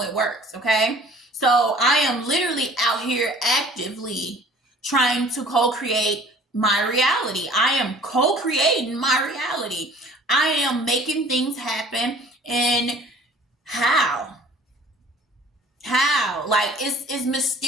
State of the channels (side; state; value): both; normal; correlation 0.51